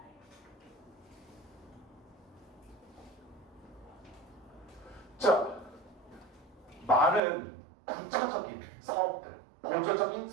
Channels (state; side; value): drops out; left; at 7.2 s